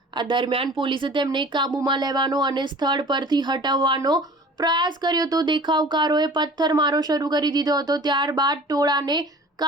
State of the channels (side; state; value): both; normal; correlation 0.44